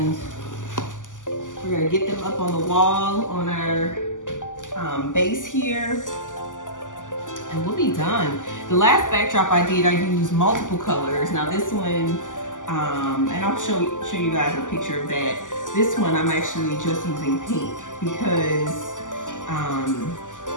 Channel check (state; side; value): late; right; 0.87 ms